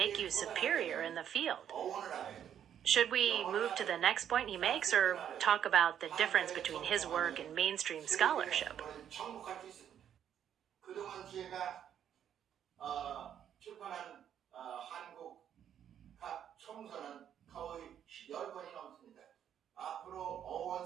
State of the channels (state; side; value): quieter; left; 9.5 dB